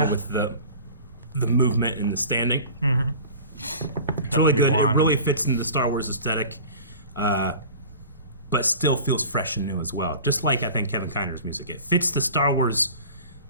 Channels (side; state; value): both; inverted; correlation -0.40